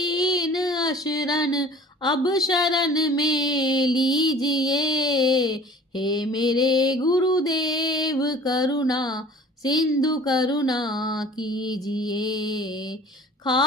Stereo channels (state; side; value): normal; both; correlation 0.46